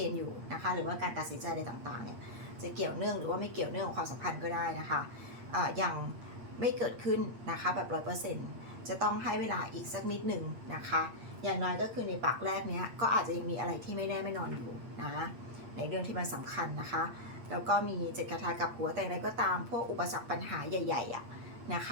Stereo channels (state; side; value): late; left; 8.6 ms